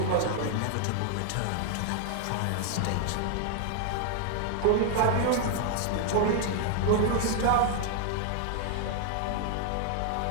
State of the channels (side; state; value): both; different; correlation 0.00